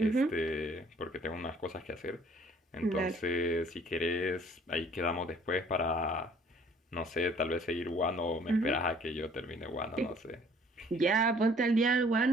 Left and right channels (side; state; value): both; normal; correlation 0.57